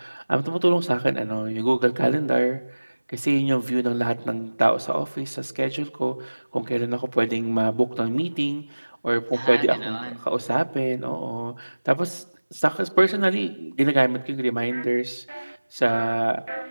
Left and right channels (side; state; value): both; inverted; correlation -1.00